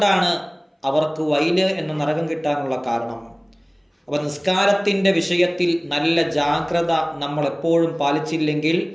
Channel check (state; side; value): identical; both; correlation 1.00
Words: അവർക്ക് വൈല് എന്ന നരകം കിട്ടാനുള്ള കാരണം. അപ്പോൾ നിസ്കാരത്തിൻ്റെ വിഷയത്തിൽ നല്ല ജാഗ്രത നമ്മൾ എപ്പോഴും പാലിച്ചില്ലെങ്കിൽ